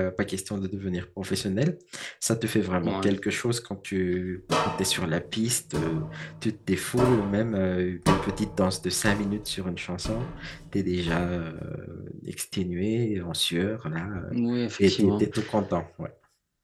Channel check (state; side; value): identical; both; correlation 1.00